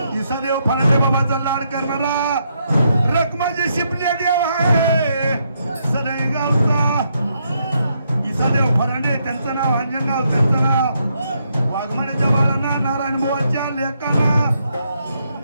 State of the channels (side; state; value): both; inverted; correlation -0.77